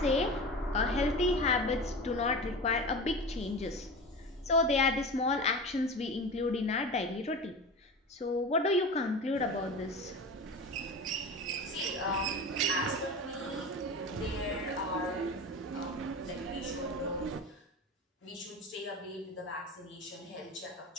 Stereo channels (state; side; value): normal; both; correlation 0.30